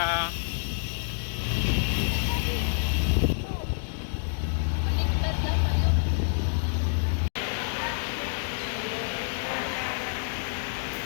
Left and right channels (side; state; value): right; silent; digital silence